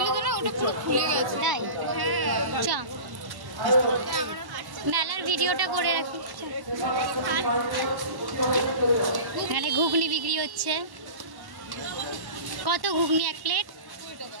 তো না, ওটা পুরো খুলে গেছে। তাই চ মেলার ভিডিওটা করে রাখি। এখানে ঘুগনি বিক্রি হচ্ছে। কত ঘুগনি এক প্লেট?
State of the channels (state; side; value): late; left; 1.1 ms